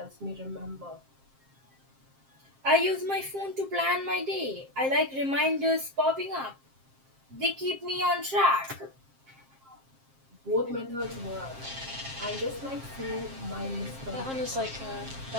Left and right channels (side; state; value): left; late; 7.5 ms